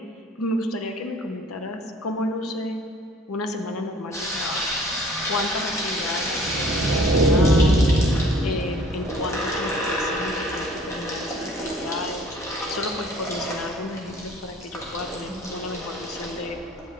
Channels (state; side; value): normal; both; correlation 0.52